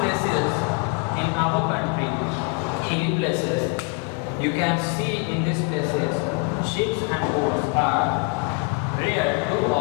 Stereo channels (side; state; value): right; quieter; 30.9 dB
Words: in our country, hilly places, you can see in these places sheep and goats are reared to